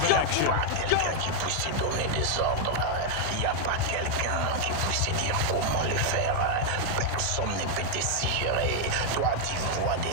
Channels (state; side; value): different; both; correlation 0.00